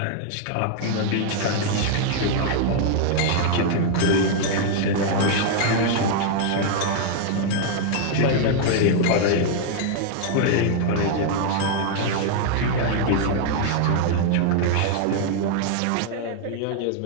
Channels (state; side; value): different; both; correlation 0.00